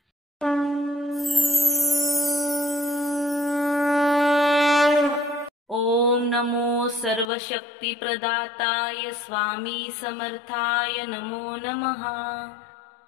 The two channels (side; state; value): right; drops out; at 7.2 s